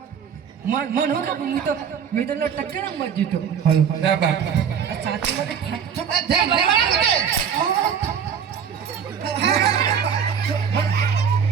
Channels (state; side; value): quieter; left; 7.5 dB